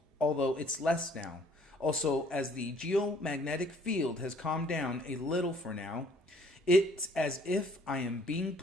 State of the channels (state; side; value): normal; both; correlation 0.59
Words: although it's less now. Also, as the geomagnetic field has calmed down a little for now, it's as if I am being